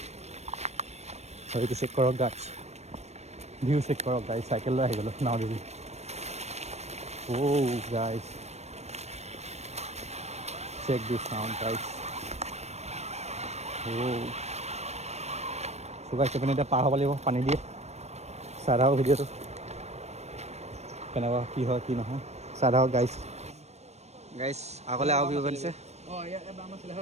সেইটো চেক কৰক গাইছ ভিউ চেক কৰক গাইছ চাইকেল লৈ আহি গ'লোঁ নাও দিবি গাইছ চেক দিছ চাউণ্ড গাইছ চুগাইছে পিনে এতিয়া পাৰ হ'ব লাগিব পানী দিয়ে চাই থাকক ভিডিঅ'টো কেনেকুৱা কি হয় কি নহয় চাই থাকক গাইছ আগলৈ আৰু ভিউ বনিছে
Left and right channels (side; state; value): left; late; 0.31 ms